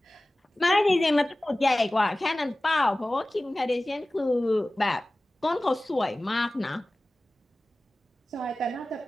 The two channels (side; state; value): both; normal; correlation 0.97